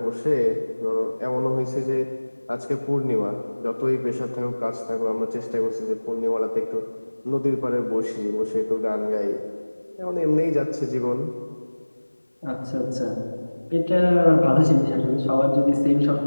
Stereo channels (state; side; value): inverted; both; correlation -1.00